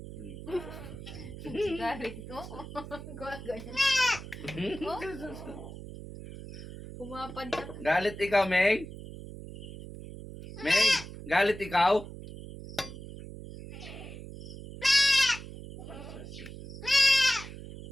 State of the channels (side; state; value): right; noise; hum, 12 dB below the sound